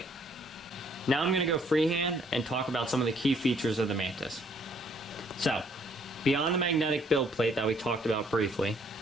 Now I'm going to go freehand and talk about some of the key features of the Mantis. So, beyond the magnetic build plate that we talked about briefly,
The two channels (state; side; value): normal; both; correlation 0.65